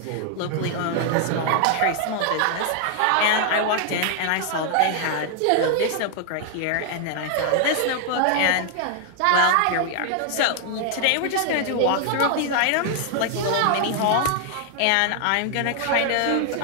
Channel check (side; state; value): both; different; correlation 0.00